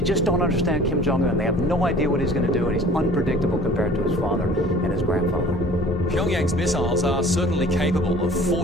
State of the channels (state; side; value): normal; both; correlation 0.48